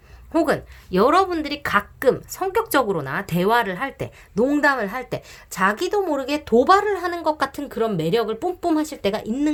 혹은 여러분들이 가끔 성격적으로나 대화를 할 때, 농담을 할 때 자기도 모르게 도발을 하는 것 같은 그런 매력을 뿜뿜 하실 때가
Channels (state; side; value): identical; both; correlation 1.00